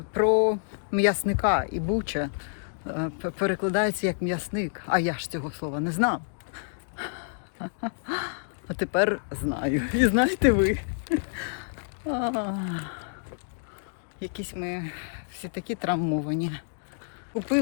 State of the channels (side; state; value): right; silent; digital silence